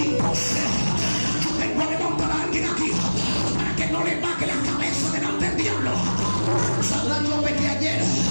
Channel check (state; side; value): inverted; both; correlation -1.00